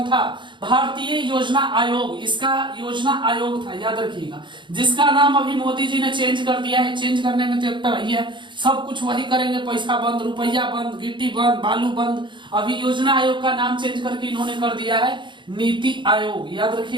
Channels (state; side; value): late; left; 0.23 ms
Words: था? भारतीय योजना आयोग। इसका योजना आयोग था, याद रखिएगा, जिसका नाम अभी मोदी जी ने चेंज कर दिया है। चेंज करने में तो एक वही है, सब कुछ वही करेंगे, पैसा बंद, रुपया बंद, गिट्टी बंद, बालू बंद। अभी योजना आयोग का नाम चेंज करके इन्होंने कर दिया है नीति आयोग। याद